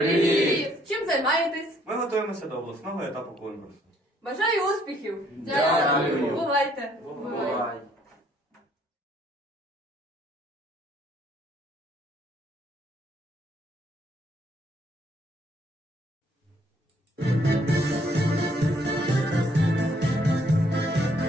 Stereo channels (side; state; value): both; normal; correlation 0.66